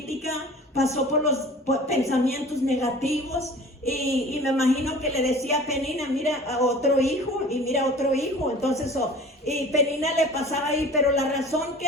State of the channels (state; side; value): normal; both; correlation 0.43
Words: pasó por los pensamientos negativos. Y me imagino que le decía a Penina, mira a otro hijo y mira a otro hijo. Entonces, y Penina le pasaba ahí, pero la razón